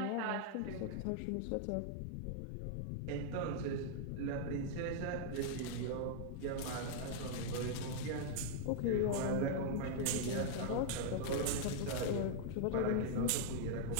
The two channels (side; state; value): both; different; correlation -0.01